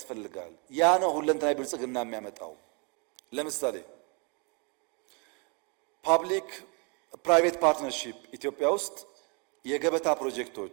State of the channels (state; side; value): quieter; left; 33.7 dB